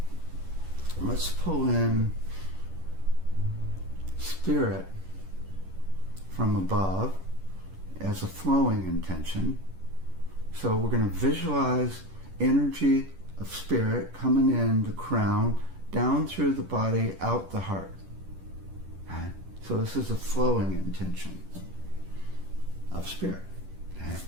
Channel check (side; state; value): left; late; 10 ms